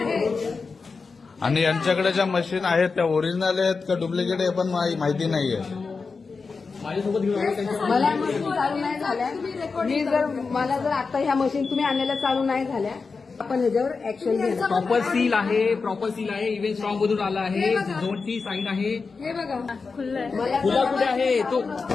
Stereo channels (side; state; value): right; quieter; 4.6 dB